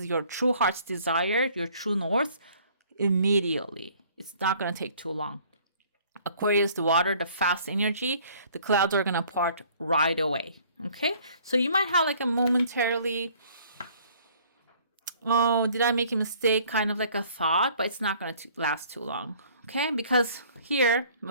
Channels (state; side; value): inverted; both; correlation -0.56